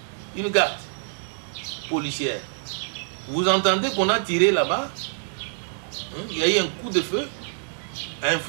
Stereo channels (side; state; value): left; silent; digital silence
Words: une garde policière. Vous entendez qu'on a tiré là-bas, il y a eu un coup de feu,